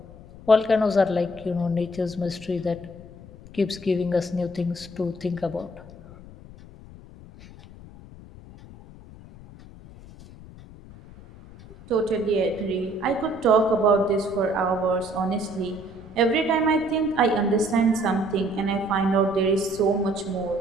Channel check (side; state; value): left; noise; rumble, 18 dB below the sound